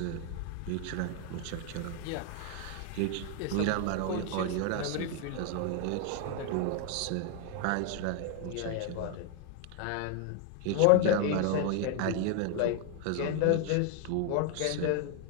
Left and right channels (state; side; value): different; both; correlation 0.01